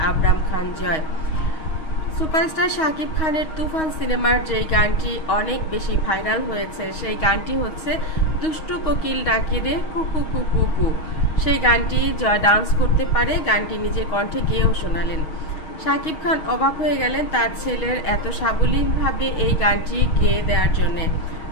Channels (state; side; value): late; right; 6.3 ms